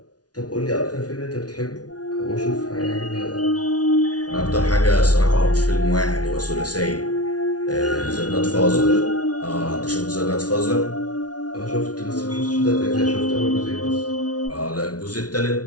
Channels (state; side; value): late; right; 0.69 ms